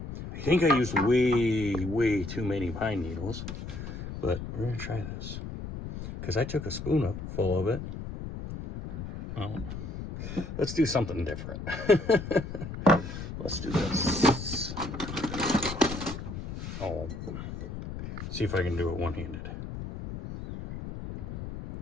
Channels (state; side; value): noise; left; rumble, 8 dB below the sound